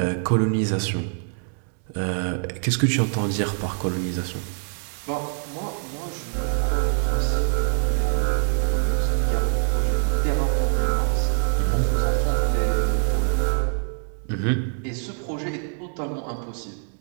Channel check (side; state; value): left; silent; 55 dB below the other